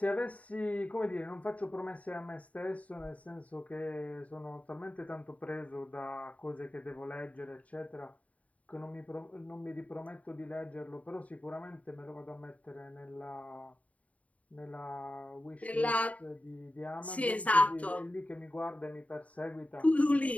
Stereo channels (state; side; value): late; right; 0.068 ms